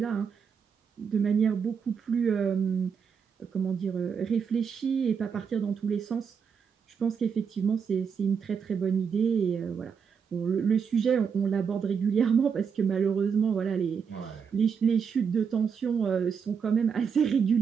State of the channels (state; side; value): quieter; left; 6.6 dB